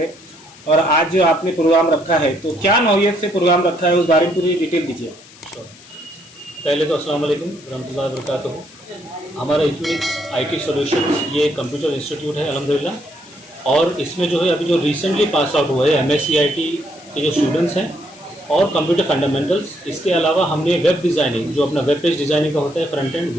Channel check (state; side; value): noise; left; hiss, 22 dB below the sound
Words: और आज जो आपने प्रोग्राम रखा है तो क्या नौयत से प्रोग्राम रखा है उस बारे में पूरी डिटेल दीजिए। पहले तो अस्सलाम वालेकुम रहमतुल्लाहि व बरकातहू। हमारा इक्विनिक्स आईटी सॉल्यूशंस ये कंप्यूटर इंस्टीट्यूट है अल्हम्दुलिल्लाह। और इसमें जो है अभी जो रिसेंटली पास आउट हुआ है एमएससीआईटी के जो स्टूडेंट्स हैं और कंप्यूटर फंडामेंटल्स, इसके अलावा हमने वेब डिज़ाइनिंग जो अपना वेब पेज डिज़ाइनिंग का होता है फ्रंट एंड